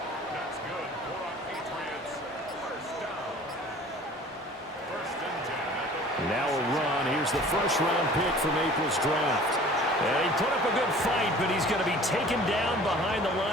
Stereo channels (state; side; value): normal; both; correlation 0.47